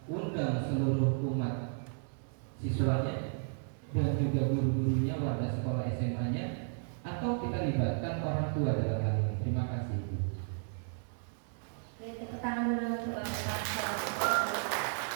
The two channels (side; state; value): left; silent; 55 dB below the other